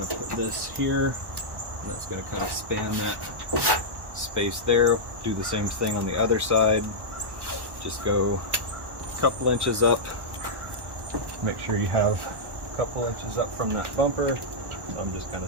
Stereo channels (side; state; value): left; late; 1.1 ms